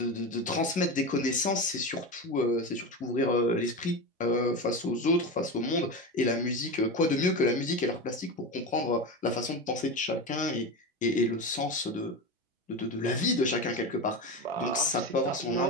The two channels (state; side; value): normal; both; correlation 0.22